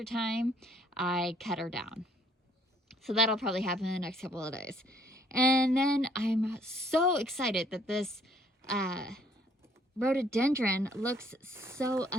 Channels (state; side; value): normal; both; correlation 0.63